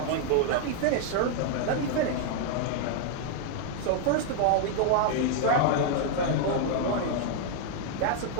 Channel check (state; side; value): different; both; correlation 0.00